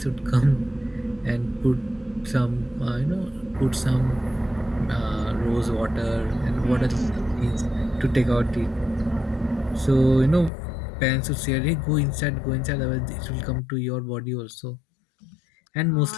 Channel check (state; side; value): drops out; right; at 10.5 s